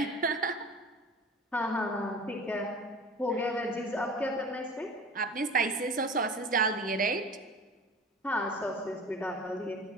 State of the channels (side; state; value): both; normal; correlation 0.39